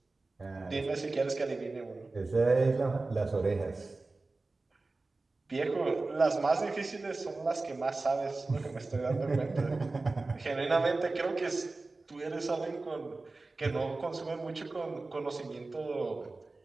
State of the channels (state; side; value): quieter; left; 3.4 dB